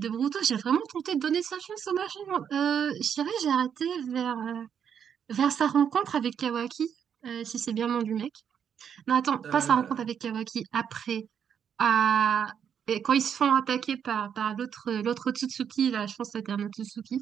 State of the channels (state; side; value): quieter; left; 8.0 dB